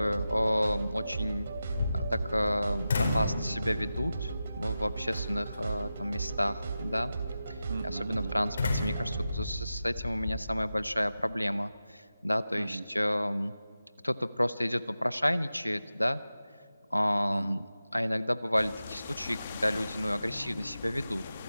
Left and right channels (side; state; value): both; inverted; correlation -0.92